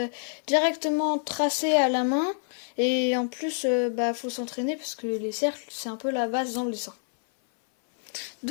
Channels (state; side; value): silent; right; 57 dB below the other